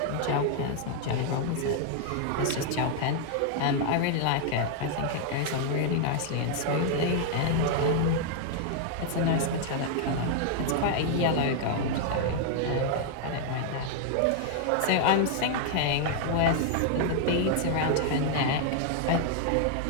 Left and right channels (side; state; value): both; different; correlation 0.00